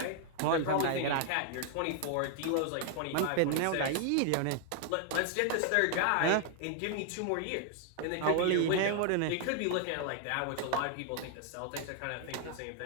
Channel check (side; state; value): both; different; correlation 0.00